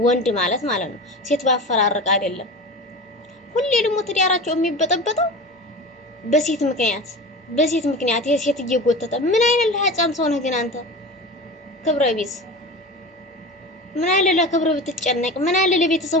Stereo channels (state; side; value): normal; both; correlation 0.31